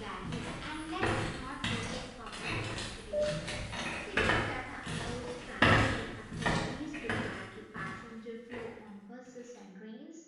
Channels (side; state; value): both; identical; correlation 1.00